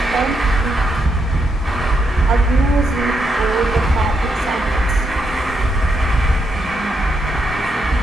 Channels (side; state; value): both; normal; correlation 0.80